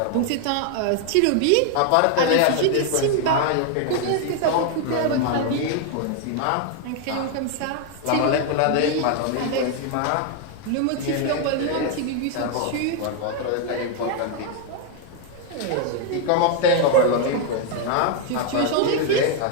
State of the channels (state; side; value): different; both; correlation 0.01